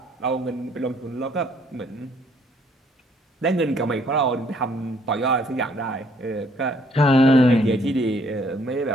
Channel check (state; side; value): normal; both; correlation 0.64